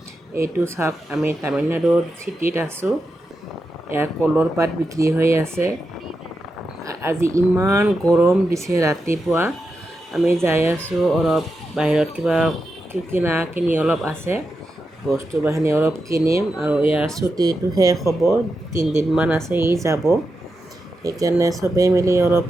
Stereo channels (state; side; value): normal; both; correlation 0.88